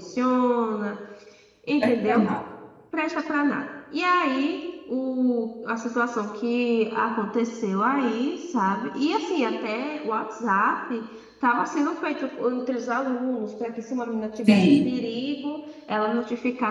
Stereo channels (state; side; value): identical; both; correlation 1.00